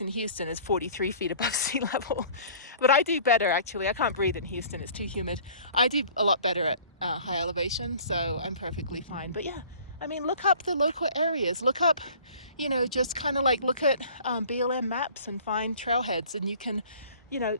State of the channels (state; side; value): inverted; both; correlation -0.49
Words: in Houston is 43 feet above sea level. But I do better, actually. I can't breathe in Houston. It's too humid. I do a lot better at high elevation, so I'm perfectly fine. But yeah, I mean, look up the local areas. Look up, just kind of like look at BLM maps and find trailheads. And you can,